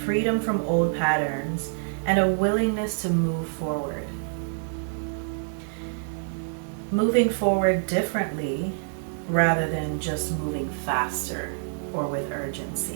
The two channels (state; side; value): silent; left; digital silence